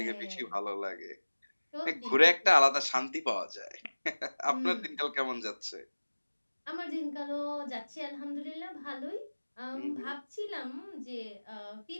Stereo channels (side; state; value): both; inverted; correlation -1.00